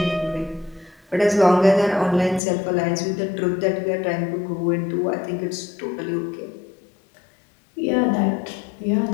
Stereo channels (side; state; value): right; drops out; at 2.4 s